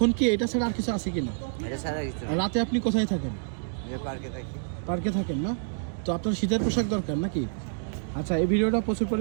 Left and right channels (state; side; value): silent; left; digital silence